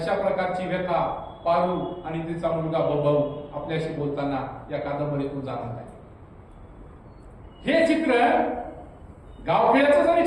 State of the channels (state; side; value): identical; both; correlation 1.00